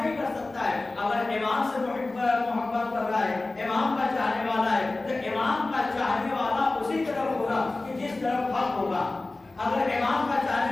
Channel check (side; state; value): right; quieter; 3.1 dB